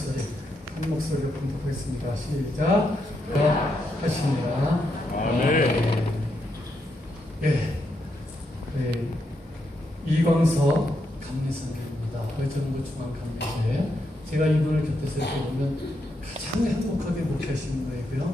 한 목소리로 봉독하겠습니다. 시작. 하십니다. 아멘. 예. 네. 이광서 감리선교입니다. 의정부 중앙감리교회. 제가 이분을 곁에서 이렇게 보면 가장 행복하게 목회하시는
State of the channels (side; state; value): both; normal; correlation 0.81